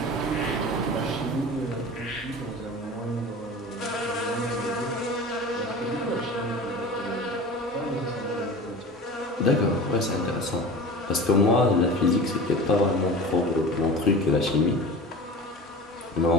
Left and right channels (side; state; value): both; normal; correlation 0.35